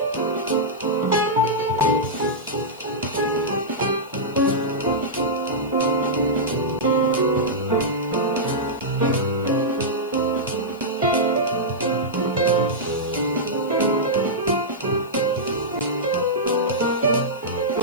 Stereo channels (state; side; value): noise; left; hiss, 26 dB below the sound